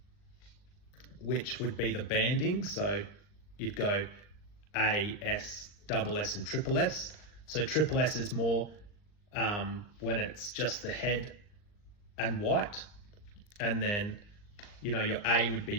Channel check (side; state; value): right; late; 39 ms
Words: which would be the banding. So you'd go A, S, double S and triple S. So triple S is more when it's just the head and white, and then your A would